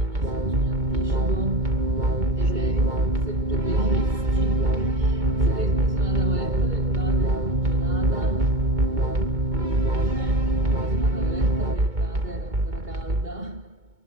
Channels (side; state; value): left; late; 2.2 ms